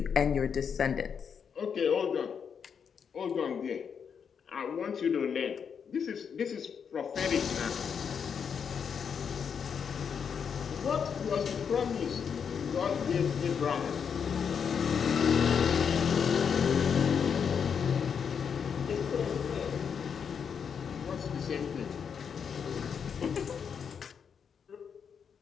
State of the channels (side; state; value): right; quieter; 6.9 dB